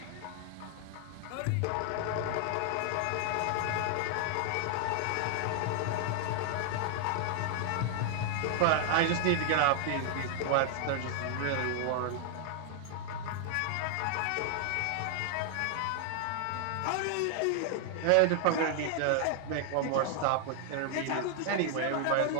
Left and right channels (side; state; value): both; different; correlation 0.00